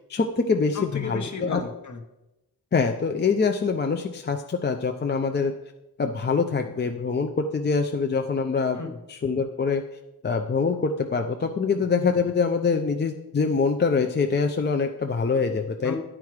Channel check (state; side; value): quieter; right; 4.6 dB